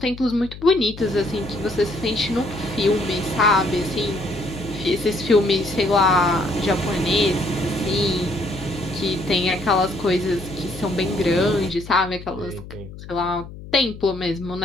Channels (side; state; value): left; noise; hum, 14 dB below the sound